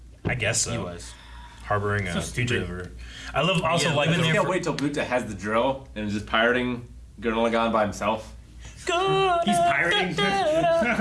I guess so. He was. Harboring a So stupid. fugitive. I love also Yeah, like living I there can't wait till Buta has the drill and is just pirating Gurren Lagann by himself. He's pirating.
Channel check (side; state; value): both; identical; correlation 1.00